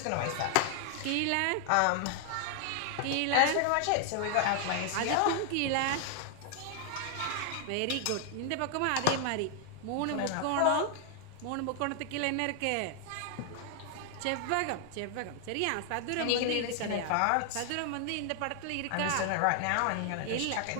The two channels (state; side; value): different; both; correlation 0.00